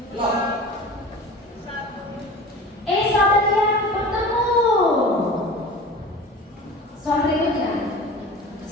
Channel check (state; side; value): normal; both; correlation 0.37